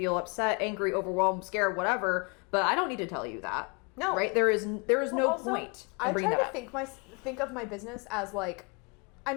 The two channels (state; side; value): quieter; right; 32.1 dB